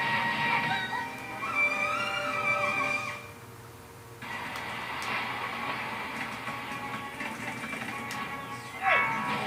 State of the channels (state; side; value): identical; both; correlation 1.00